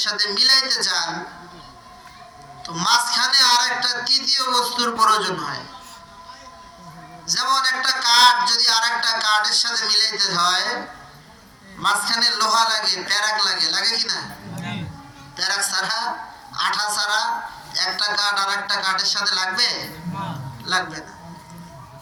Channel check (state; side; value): identical; both; correlation 1.00